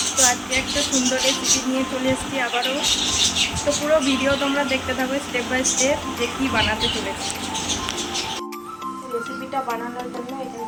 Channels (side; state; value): both; identical; correlation 1.00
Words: তো আজকে একটা সুন্দর রেসিপি নিয়ে চলে এসেছি আবারও। তো পুরো ভিডিও তোমরা দেখতে থাকো স্টেপ বাই স্টেপ যে কী বানাতে চলেছি। রেসিপিটা বানানোর জন্য এখানে